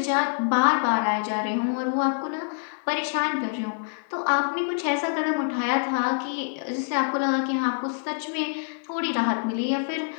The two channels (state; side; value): silent; right; 61 dB below the other